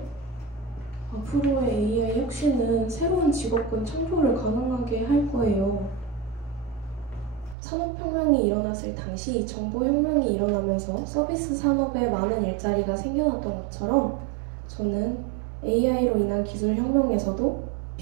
앞으로의 AI 혁신은 새로운 직업군 창조를 가능하게 할 거예요. 산업혁명이 일어났을 당시 정보혁명이 일어나면서 서비스 산업에 많은 일자리가 생겨났던 것처럼 저는 AI로 인한 기술혁명에서도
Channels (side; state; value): left; drops out; at 7.6 s